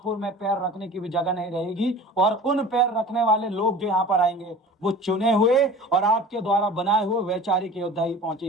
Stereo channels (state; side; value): normal; both; correlation 0.40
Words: में पैर रखने की भी जगह नहीं रहेगी और उन पैर रखने वाले लोग जो यहाँ पर आएंगे वो चुने हुए और आपके द्वारा बनाए हुए वैचारिक योद्धा ही